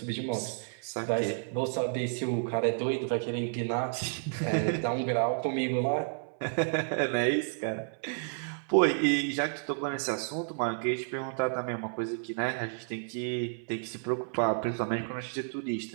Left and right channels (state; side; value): silent; left; 57 dB below the other